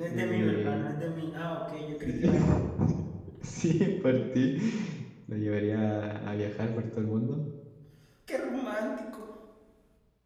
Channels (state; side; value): identical; both; correlation 1.00